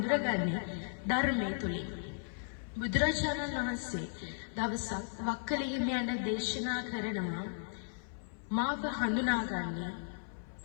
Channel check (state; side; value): silent; right; 54 dB below the other